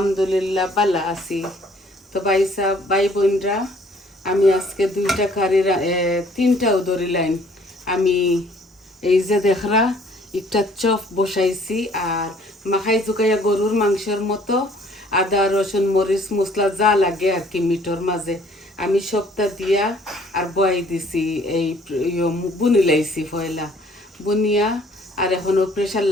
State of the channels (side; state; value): both; normal; correlation 0.58